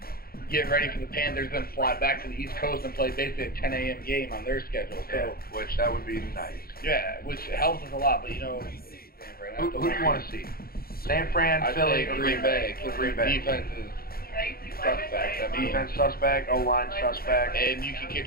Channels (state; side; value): late; right; 0.44 ms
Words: get ready for the Panthers, then fly back to the East Coast and play basically a 10 a.m. game on their schedule. So, which that would be nice. Yeah, which helps us a lot. But who do you want to see? San Fran, Philly, or Green Bay? Green Bay. Defense is suspect. Defense suspect, O-line suspect. And you can